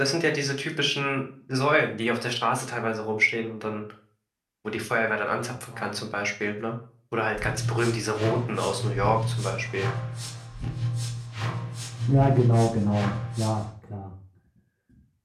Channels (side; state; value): both; identical; correlation 1.00